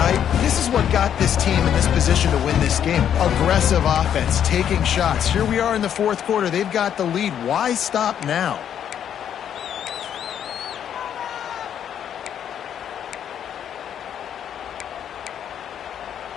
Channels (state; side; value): quieter; right; 9.3 dB